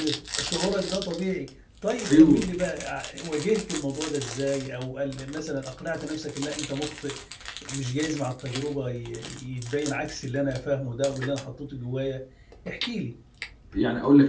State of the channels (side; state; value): both; identical; correlation 1.00